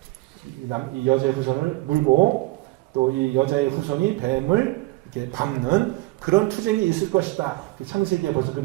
이 여자의 후손을 물고 또 이 여자의 후손이 뱀을 이렇게 밟는 그런 투쟁이 있을 것이다. 창세기에 벌써 그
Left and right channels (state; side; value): quieter; left; 21.5 dB